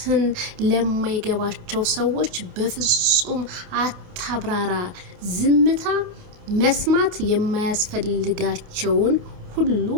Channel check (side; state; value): left; late; 28 ms